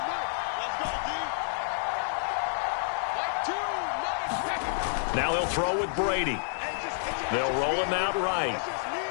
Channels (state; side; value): silent; right; 58 dB below the other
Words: Now he'll throw with Brady. They'll roll him out right.